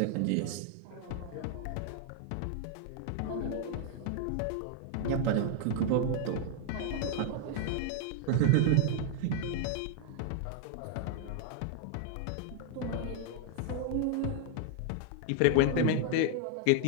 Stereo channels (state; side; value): different; both; correlation 0.00